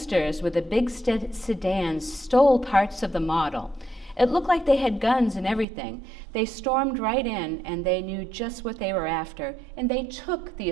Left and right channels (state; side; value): drops out; left; at 5.7 s